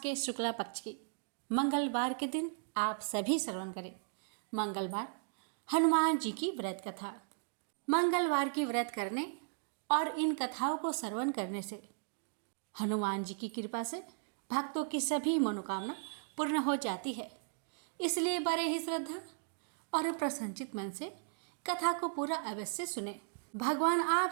शुक्ला पक्ष की मंगलवार के दिन आप सभी श्रवण करें। मंगलवार हनुमान जी की व्रत कथा। मंगलवार की व्रत करने और इन कथाओं को श्रवण करने से हनुमान जी की कृपा से भक्तों की सभी मनोकामना पूर्ण हो जाती है। इसलिए बड़े ही श्रद्धा और प्रसन्नचित मन से कथा को पूरा अवश्य सुने। भगवान आप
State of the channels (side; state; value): left; silent; digital silence